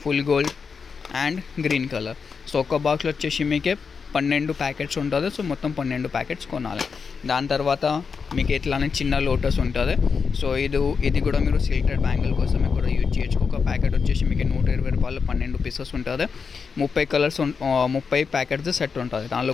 full gold and green colour. So ఒక బాక్స్లో వచ్చేసి మీకు 12 ప్యాకెట్స్ ఉంటుంది. సో మొత్తం 12 ప్యాకెట్స్ కొనాలి. దాని తర్వాత మీకు ఇట్లానే చిన్న లోటస్ ఉంటుంది. సో ఇది కూడా మీరు సిల్క్టెడ్ బ్యాంగిల్ కోసమే కూడా యూజ్ చేయొచ్చు. ఒక ప్యాకెట్ వచ్చేసి మీకు 120 రూపాయలు 12 పీసెస్ ఉంటుంది. 30 కలర్స్ 30 ప్యాకెట్స్ సెట్ ఉంటుంది. దానిలో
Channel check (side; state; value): right; quieter; 5.6 dB